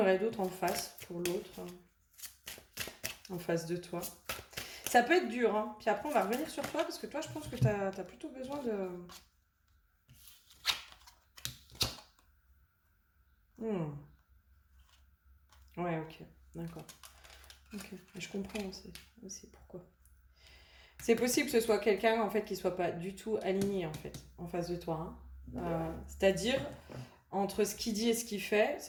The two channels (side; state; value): both; identical; correlation 1.00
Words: d'autres en face pour l'autre, hein, en face de toi? Ça peut être dur, hein. Puis après, on va revenir sur toi, parce que toi, je pense que t'as plutôt besoin de... Hmm. Ouais, ok, d'accord. Ok, je comprends aussi pourquoi. C'est possible que ce soit quelqu'un en fait qui soit pas du tout aligné en fait en face de toi. Hein. C'est-à-dire entre ce qu'il dit et ce qu'il fait,